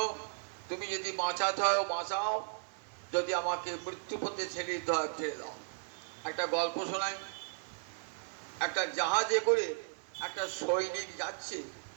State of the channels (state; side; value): silent; left; digital silence